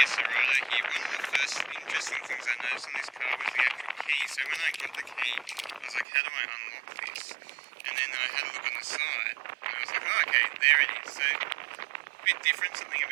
Cerato here. One of the first interesting things I noticed on this car was the actual key. So when I got the key, I was like, how do I unlock this? And then I had a look on the side, and I was like, oh, okay, there it is. So a bit different, something a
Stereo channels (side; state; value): left; drops out; at 6.1 s